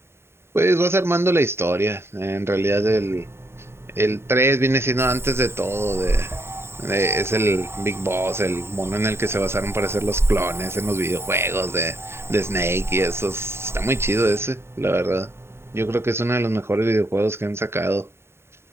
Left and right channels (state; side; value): late; left; 0.12 ms